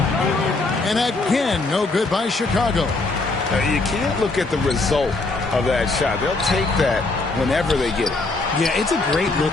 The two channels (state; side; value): quieter; right; 3.4 dB